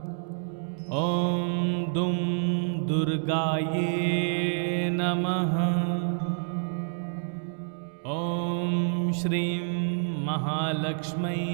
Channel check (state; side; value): silent; left; 59 dB below the other